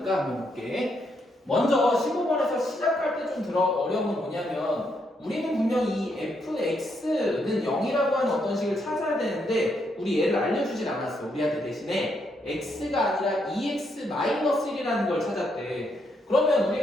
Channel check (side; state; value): both; normal; correlation 0.77